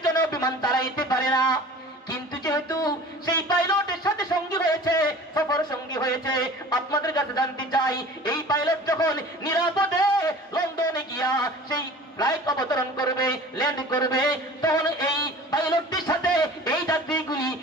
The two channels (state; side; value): normal; both; correlation 0.42